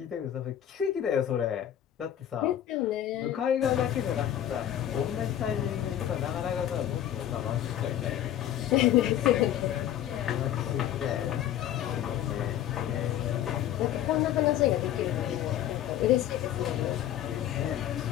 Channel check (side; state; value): right; quieter; 11.3 dB